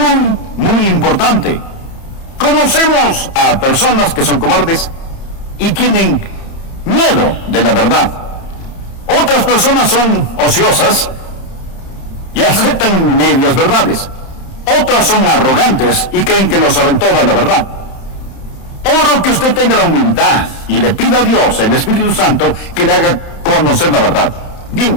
importante. Conocemos a personas que son cobardes y tienen miedo de la verdad. Otras personas son ociosas y aceptan medias verdades. Otras son arrogantes y creen que lo saben toda la verdad. Oro que usted tenga la humildad y le pida a Dios, el Espíritu Santo, que le haga conocer la verdad.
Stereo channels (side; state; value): right; late; 30 ms